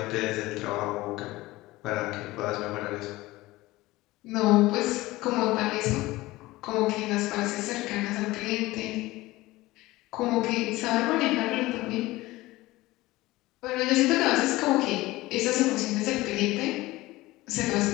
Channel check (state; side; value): quieter; right; 19.0 dB